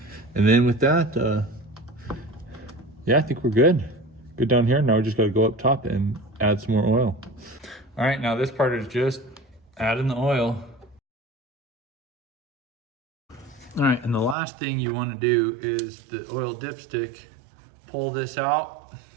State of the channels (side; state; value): left; drops out; at 14.4 s